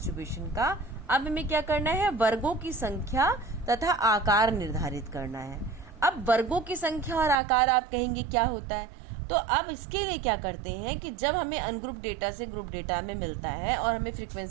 का, अब हमें क्या करना है, वर्गों की संख्या तथा आकार निर्धारित करना है। अब वर्गों की संख्या और आकार आप कहेंगे क्या होता है, तो अब इसके लिए क्या करते हैं कि जब हमें अनग्रुप डेटा से ग्रुप डेटा में मिलता है और हमें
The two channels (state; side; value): drops out; left; at 7.4 s